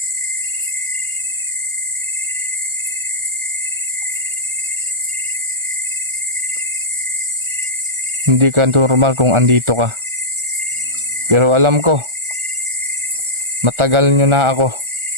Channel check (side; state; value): left; late; 1.4 ms